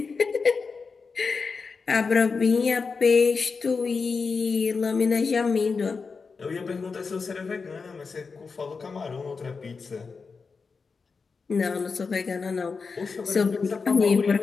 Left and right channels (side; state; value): right; quieter; 4.9 dB